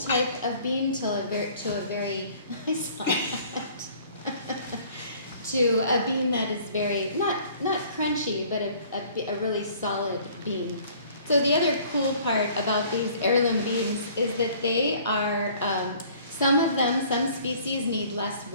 of bean to a very I saw that. To a bean that is very not crunchy, but a really solid bean. So the other cool part about these heirloom beans is that they are some species need less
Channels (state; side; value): inverted; both; correlation -0.54